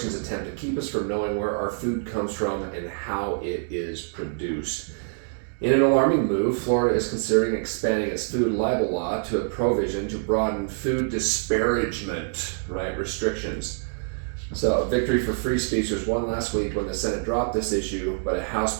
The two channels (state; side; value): silent; left; digital silence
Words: attempt to keep us from knowing where our food comes from and how it is produced. In an alarming move, Florida is considering expanding its food libel law to a provision to broaden food disparagement, restrictions. So a victory for free speech was won last week when the Senate dropped this issue, but a House